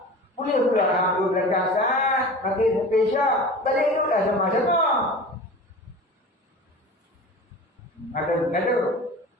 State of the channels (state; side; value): normal; both; correlation 0.36